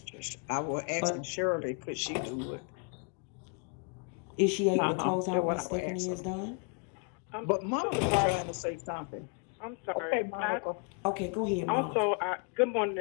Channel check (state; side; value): quieter; right; 38.3 dB